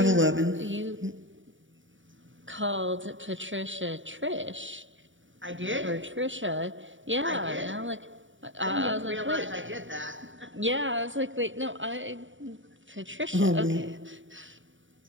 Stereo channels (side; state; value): left; late; 0.56 ms